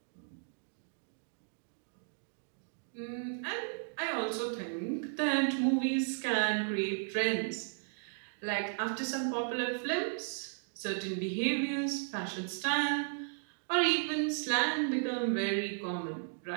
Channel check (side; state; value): left; silent; digital silence